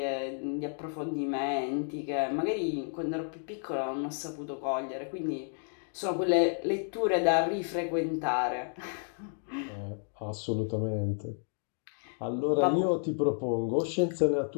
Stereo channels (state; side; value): silent; right; 57 dB below the other